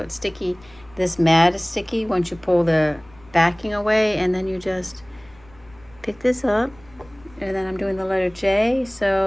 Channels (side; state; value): left; noise; rumble, 26 dB below the sound